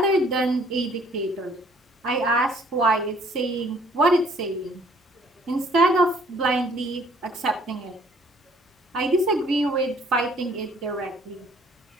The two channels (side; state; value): both; normal; correlation 0.59